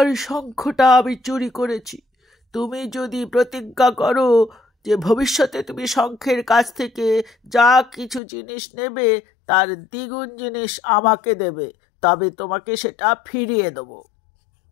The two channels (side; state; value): right; drops out; at 8.2 s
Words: শঙ্খটা আমি চুরি করেছি। তুমি যদি প্রতিজ্ঞা করো যে ভবিষ্যতে তুমি শঙ্খের কাছ থেকে যা কিছু জিনিস নেবে তার দ্বিগুণ জিনিস আমাকে দেবে, তবে তোমাকে সেটা ফিরিয়ে দেব।